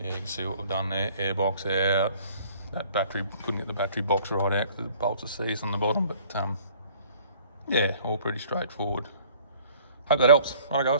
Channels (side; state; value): both; inverted; correlation -0.55